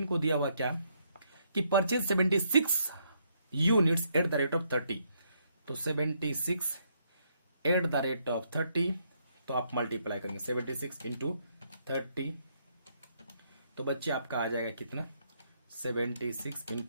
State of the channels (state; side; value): inverted; both; correlation -0.73